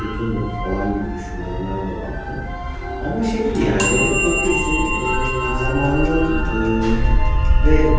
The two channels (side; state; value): both; identical; correlation 1.00